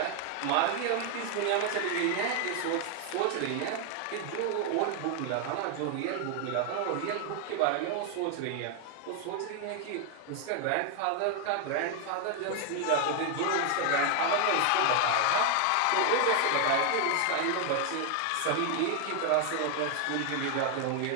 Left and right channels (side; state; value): both; different; correlation 0.00